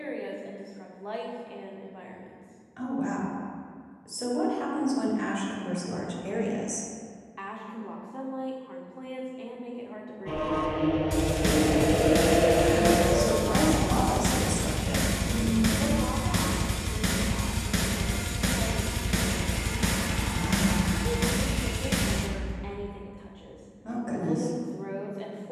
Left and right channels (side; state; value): both; identical; correlation 1.00